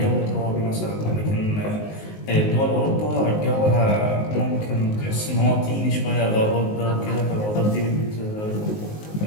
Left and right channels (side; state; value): right; late; 19 ms